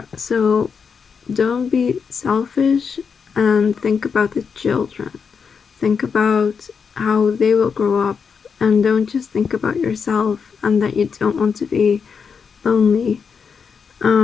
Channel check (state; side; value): quieter; right; 6.0 dB